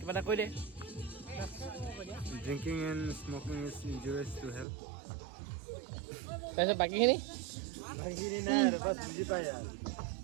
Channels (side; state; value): left; drops out; at 4.7 s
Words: এটা কৈ দে Drinking and smoking is injurious to health. তাৰপিছত বাকীখিনি